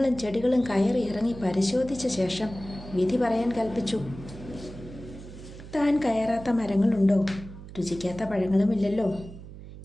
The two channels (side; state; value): right; noise; hum, 14 dB below the sound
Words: ചെടികളും കയറി ഇറങ്ങി പരിശോധിച്ച ശേഷം വിധി പറയാൻ കൽപ്പിച്ചു. താൻ കയറാത്ത മരങ്ങളുണ്ടോ? രുചിക്കാത്ത പഴങ്ങളുമില്ലല്ലോ.